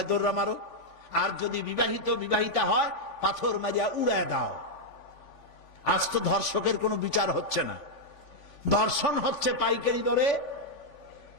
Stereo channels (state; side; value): late; right; 3.5 ms